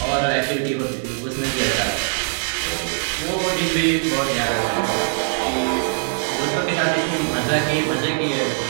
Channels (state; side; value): silent; left; 65 dB below the other